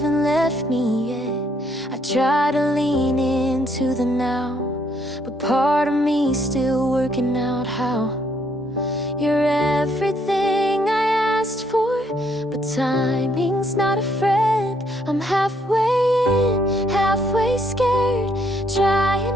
left me yet. I try to lean into the now, but part of me's still working out how. You're everything I asked for, but timing's not a friend. I'm halfway in, halfway scared, trying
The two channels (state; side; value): normal; both; correlation 0.70